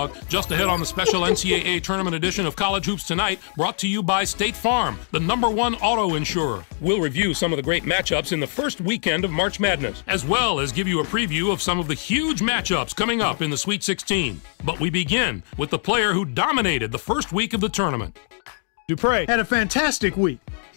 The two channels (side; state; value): right; silent; 58 dB below the other